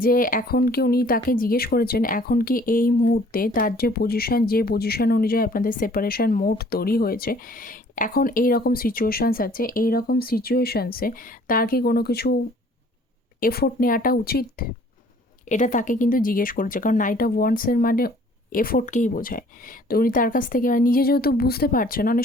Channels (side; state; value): both; normal; correlation 0.56